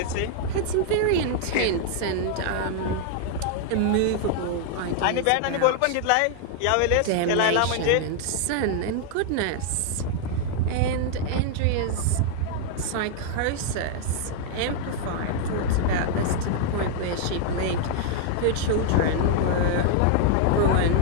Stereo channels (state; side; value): different; both; correlation 0.00